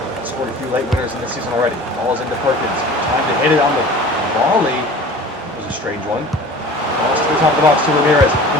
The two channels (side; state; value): both; normal; correlation 0.42